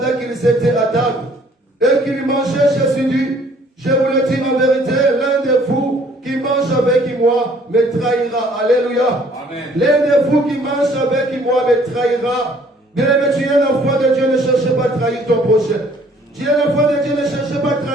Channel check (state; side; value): normal; both; correlation 0.59